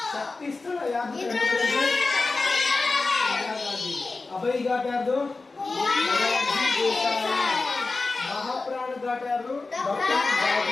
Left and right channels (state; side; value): quieter; right; 3.7 dB